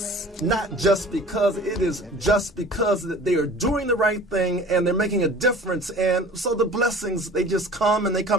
not just because, it is just because that they are doing the right thing and they're making a difference. And so the blessings, they just come and they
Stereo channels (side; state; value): both; normal; correlation 0.44